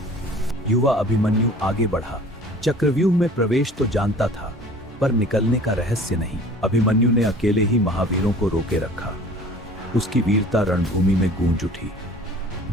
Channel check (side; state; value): both; normal; correlation 0.47